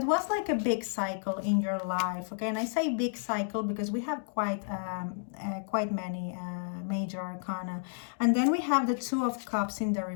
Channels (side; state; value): right; silent; digital silence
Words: was like a big cycle in your life. Okay, and I say big cycle because we have quite many major arcana, and then we have the Two of Cups in the